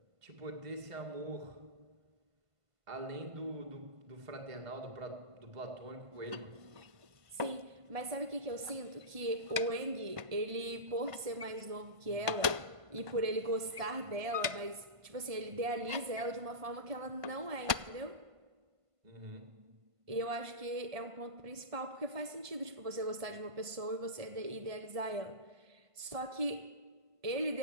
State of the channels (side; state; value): left; late; 1.5 ms